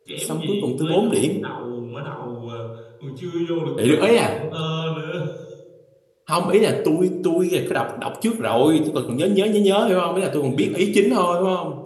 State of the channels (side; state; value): both; identical; correlation 1.00